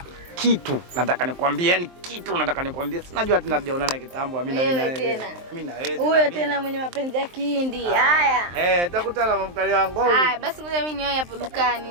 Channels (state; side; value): late; left; 23 ms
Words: kitu nataka nikwambie, yani kitu nataka nikwambie. Sinajua tena tujaonana kitambo Amina mimi na wewe. Mimi na wewe. Huyo tena mwenye mapenzi ya kihindi. Haya. Tutakutana mamkali wangu. Haya, basi ngoja mimi niwahi hapo